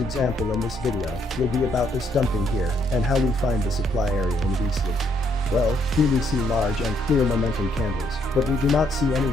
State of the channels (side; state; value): both; normal; correlation 0.72